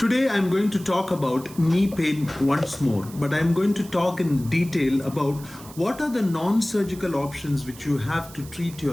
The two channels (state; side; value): noise; right; hiss, 19 dB below the sound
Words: I'm going to talk about knee pain once more, but I'm going to talk in detail about what are the non-surgical options which you have to treat